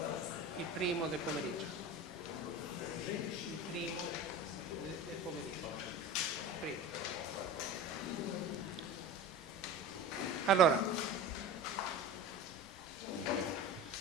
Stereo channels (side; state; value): both; normal; correlation 0.32